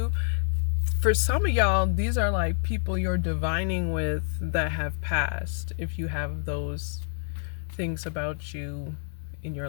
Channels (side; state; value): right; silent; 56 dB below the other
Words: For some of y'all, these are like people you're divining with that have passed, if you have those things about you in your